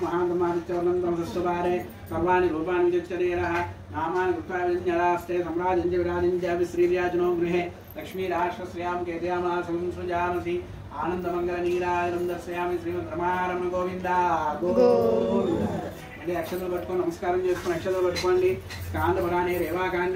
మహాంతం ఆదిత్యవర్ణంతం సస్వారే సర్వాణి రూపాన్ని విచక్షరేర నామాని కృత్వాస్తే సమ్రాజించ విరాజించ శ్రీవ్యాజనో గృహే లక్ష్మీరాశ్రశ్రయాం కేతయామాసం సృజానసి ఆనందమంగళనీరాజనం దర్శయామి శ్రీమద్ రమారమణ గోవింద గోవింద అక్షతలు పట్టుకొని నమస్కారం చేసుకుని అక్షతలు పట్టుకోండి స్కాందపురాణే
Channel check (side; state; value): both; identical; correlation 1.00